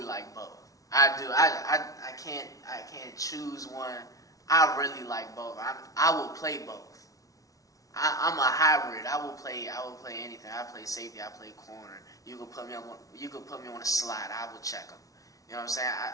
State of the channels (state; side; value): late; right; 0.17 ms